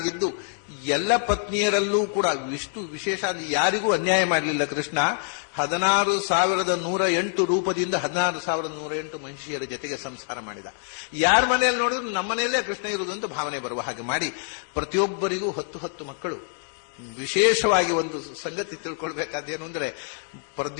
ಎಲ್ಲ ಪತ್ನಿಯರಲ್ಲೂ ಕೂಡ ಇಷ್ಟು ವಿಶೇಷ ಯಾರಿಗೂ ಅನ್ಯಾಯ ಮಾಡಲಿಲ್ಲ ಕೃಷ್ಣ. 16,108 ರೂಪದಿಂದ 16,108 ಮಹಿಷಿಯರ ಜೊತೆಗೆ ಸಂಸಾರ ಮಾಡಿದ. ಯಾರ ಮನೆಯಲ್ಲಿ ನೋಡಿದ್ರು ನಮ್ಮ ಮನೆಯಲ್ಲೇ ಕೃಷ್ಣ ಇರುವುದು ಅಂತ ಭಾವನೆ ಬರುವ ಹಾಗೆ ಮಾಡಿ ಪ್ರತಿಯೊಬ್ಬರಿಗೂ 10 ಮಕ್ಕಳು. ವಿಶೇಷವಾಗಿ ಒಂದು ಸಂಗತಿ ತಿಳ್ಕೊಳ್ಬೇಕಾದೇನು ಅಂದ್ರೆ,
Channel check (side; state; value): right; silent; 61 dB below the other